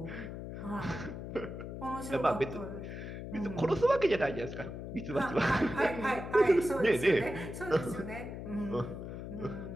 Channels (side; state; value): left; noise; hum, 8 dB below the sound